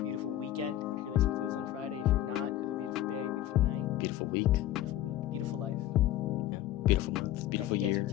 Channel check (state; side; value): quieter; right; 13.1 dB